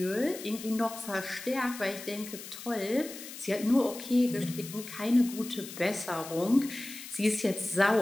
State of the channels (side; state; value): left; noise; hiss, 12 dB below the sound